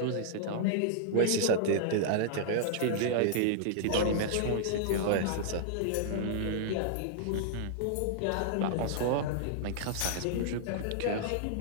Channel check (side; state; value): both; different; correlation -0.01